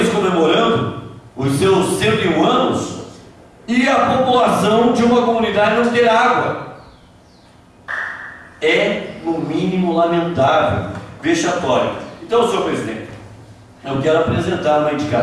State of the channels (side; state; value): both; identical; correlation 1.00